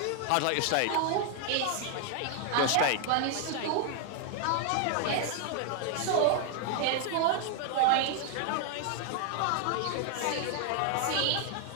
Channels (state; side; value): different; both; correlation 0.00